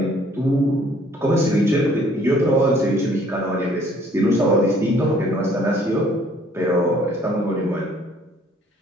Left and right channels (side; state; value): both; normal; correlation 0.59